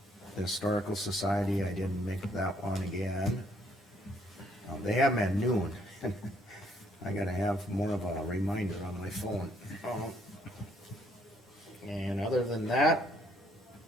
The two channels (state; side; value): normal; both; correlation 0.67